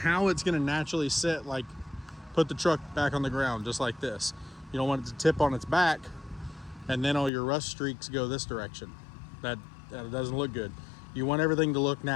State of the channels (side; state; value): right; drops out; at 7.3 s